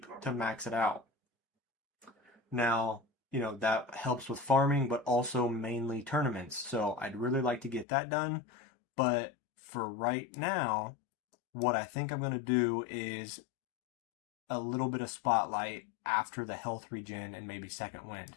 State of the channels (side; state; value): right; drops out; at 7.9 s